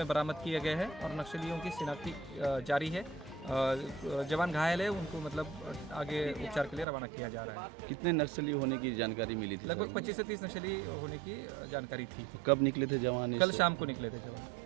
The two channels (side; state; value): left; drops out; at 6.9 s